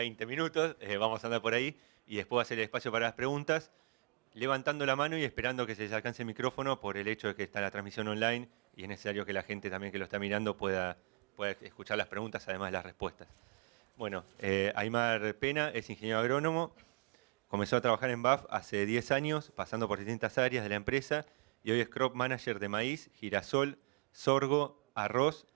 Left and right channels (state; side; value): quieter; left; 39.1 dB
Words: minutos, vamos a andar por ahí y después va a hacer el espacio para las preguntas, levantando la mano y esperando que se les alcance el micrófono por el hecho de que está la transmisión online y es necesario que la gente también que lo está mirando pueda escuchar las preguntas, además de las respuestas. Bueno, Aymar Pena es ingeniero agrónomo, comenzó a trabajar en BAF hace 10 años, pasando por distintas áreas de la empresa, y hoy es crop manager de maíz, girasol, sorgo, arroz